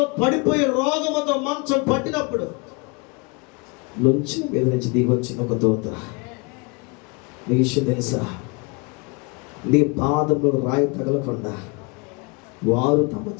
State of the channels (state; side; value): quieter; right; 29.9 dB